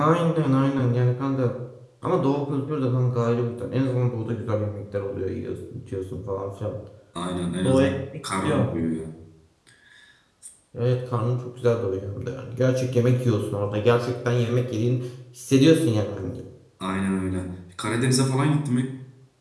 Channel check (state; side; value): identical; both; correlation 1.00